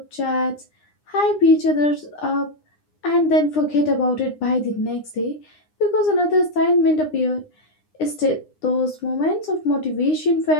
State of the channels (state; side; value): late; right; 9.8 ms